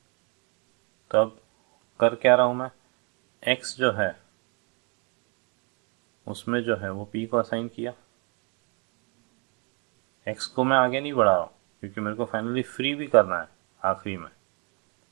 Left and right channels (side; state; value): left; quieter; 34.2 dB